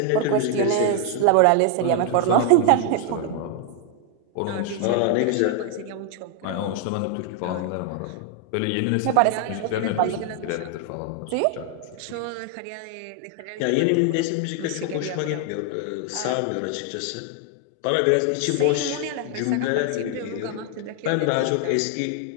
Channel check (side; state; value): both; different; correlation 0.00